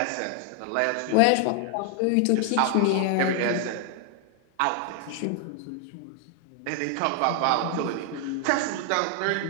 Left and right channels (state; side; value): different; both; correlation 0.00